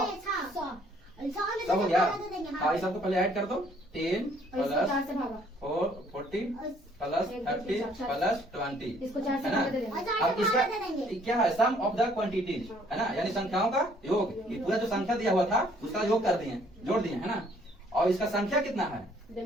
100 हो गया। हाँ, सबको पहले ऐड कर दो। 10 प्लस 4 40 प्लस 30 प्लस 20, है ना। अब इसका क्या है? सम ऑफ द क्वांटिटीज, है ना, यानी संख्याओं का योग। ये पूरा जो संख्या दिया हुआ था उसका योग कर दिए, जोड़ दिए, है ना। और इसका संख्या कितना है?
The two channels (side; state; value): both; normal; correlation 0.62